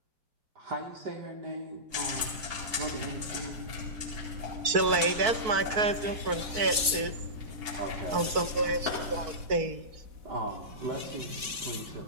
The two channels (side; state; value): left; late; 4.1 ms